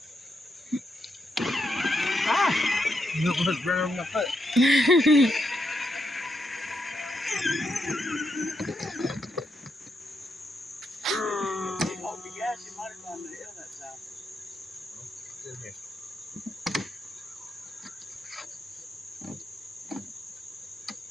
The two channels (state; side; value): normal; both; correlation 0.81